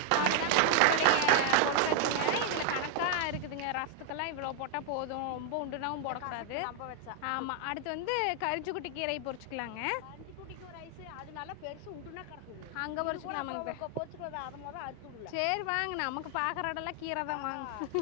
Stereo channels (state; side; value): different; both; correlation 0.00